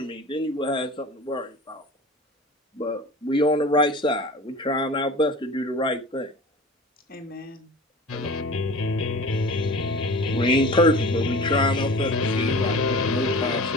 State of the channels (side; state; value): both; normal; correlation 0.38